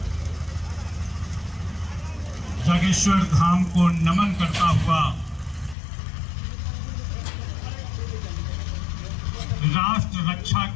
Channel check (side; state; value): right; drops out; at 5.8 s